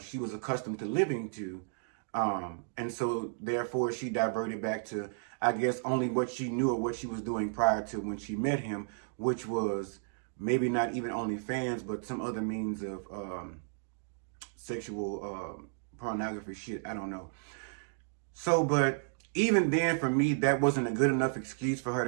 she was accustomed to living to. And so, therefore, she diverted back to, I guess, only what she knew or what she was doing prior to when she met him, which was maybe not even OnlyFans, but some other means of sexual pornography shit. I don't know. So, but even then, for me, that wasn't a good enough excuse for her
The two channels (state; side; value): silent; left; digital silence